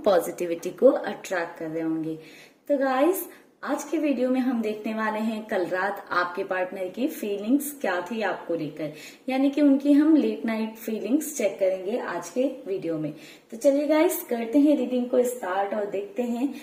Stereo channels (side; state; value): both; identical; correlation 1.00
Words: पॉजिटिविटी को अट्रैक्ट कर रहे होंगे। तो गाइस, आज के वीडियो में हम देखने वाले हैं कल रात आपके पार्टनर की फीलिंग्स क्या थी आपको लेकर, यानी कि उनकी हम लेट नाइट फीलिंग्स चेक करेंगे आज के वीडियो में। तो चलिए गाइस, करते हैं रीडिंग को स्टार्ट और देखते हैं